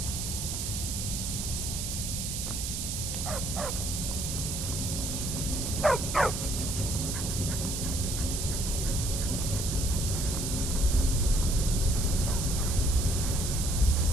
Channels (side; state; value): right; noise; hiss, 3 dB below the sound